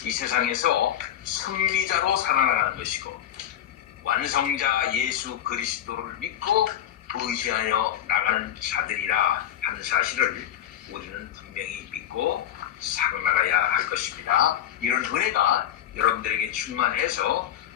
이 세상에서 승리자로 살아나가는 것이고 완성자 예수 그리스도를 믿고 의지하여 나가는 자들이라 하는 사실을 우리는 분명히 믿고 살아나가야 할 것입니다. 이런 은혜가 여러분들에게 충만해서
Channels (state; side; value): quieter; right; 11.0 dB